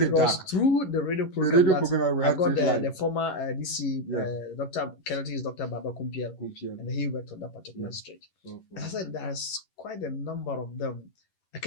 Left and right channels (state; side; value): late; right; 11 ms